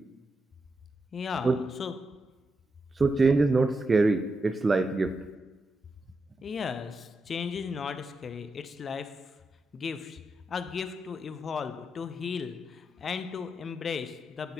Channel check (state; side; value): normal; both; correlation 0.86